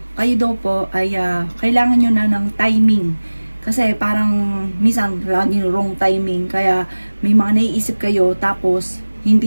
kayo daw po ay kailangan nyo na ng timing. Kasi parang minsan laging wrong timing. Kaya may mga naiisip kayo tapos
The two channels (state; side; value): inverted; both; correlation -1.00